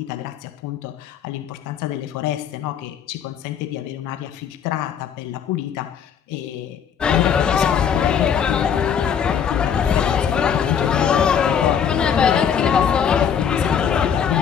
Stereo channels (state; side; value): quieter; right; 7.8 dB